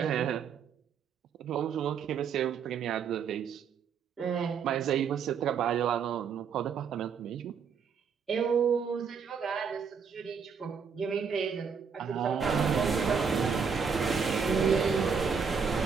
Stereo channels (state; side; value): quieter; left; 6.4 dB